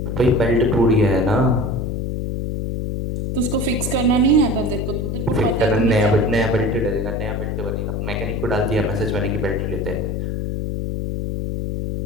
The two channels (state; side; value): noise; left; hum, 2 dB below the sound